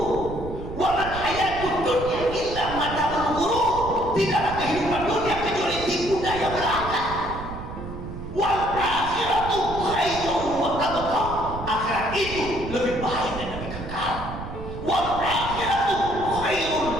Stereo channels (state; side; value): noise; right; rumble, 10 dB below the sound